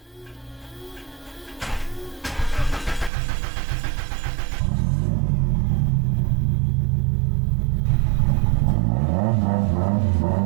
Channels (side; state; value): left; drops out; at 3.1 s